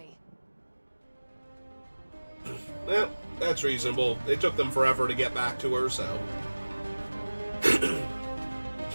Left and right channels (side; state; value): both; inverted; correlation -1.00